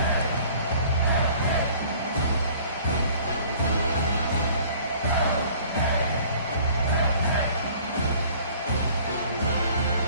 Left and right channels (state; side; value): inverted; both; correlation -0.52